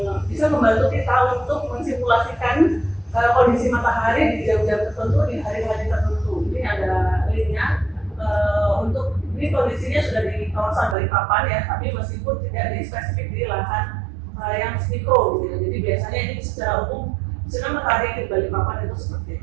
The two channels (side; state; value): left; drops out; at 11.0 s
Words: bisa membantu kita untuk mensimulasikan kondisi matahari di jam-jam tertentu, di hari-hari tertentu. Ini ada linknya. Untuk ini kondisinya sudah di kawasan Balikpapan ya, tapi meskipun tidak di spesifik di lahan yang mikro gitu. Jadi biasanya ini secara umum sinar matahari di Balikpapan itu seperti